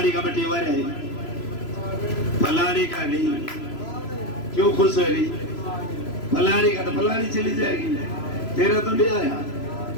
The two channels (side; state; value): right; late; 3.0 ms